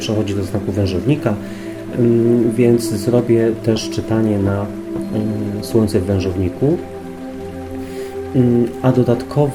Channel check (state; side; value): identical; both; correlation 1.00